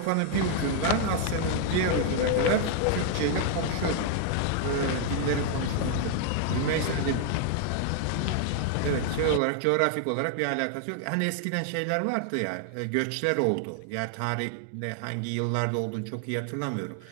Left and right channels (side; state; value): both; different; correlation 0.00